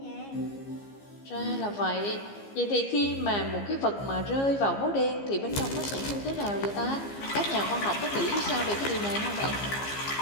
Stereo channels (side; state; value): right; late; 15 ms